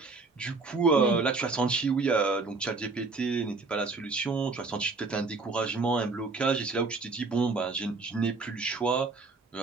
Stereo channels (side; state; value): left; quieter; 3.9 dB